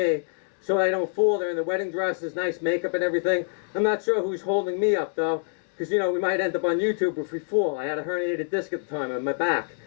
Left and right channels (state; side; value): silent; right; digital silence